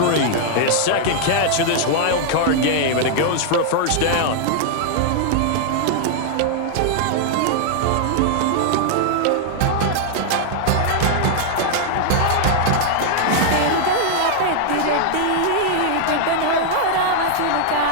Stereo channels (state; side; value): different; both; correlation 0.00